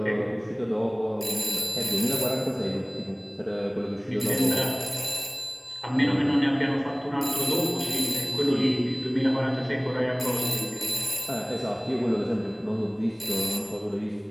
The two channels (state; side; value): identical; both; correlation 1.00